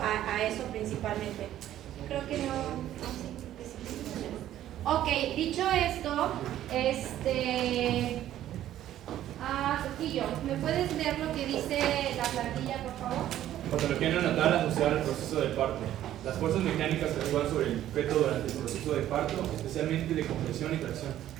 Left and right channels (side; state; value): left; quieter; 12.4 dB